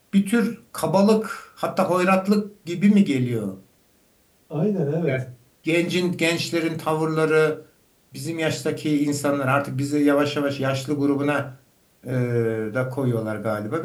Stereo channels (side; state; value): both; identical; correlation 1.00